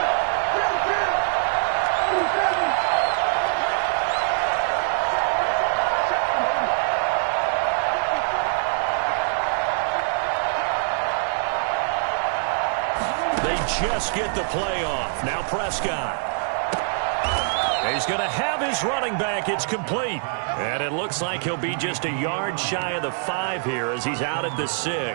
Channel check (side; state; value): left; silent; digital silence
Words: Just get the play off. Now Prescott. He's going to have his running back. It's complete. And it looks like he'll be just a yard shy of the 5 here as he's out at the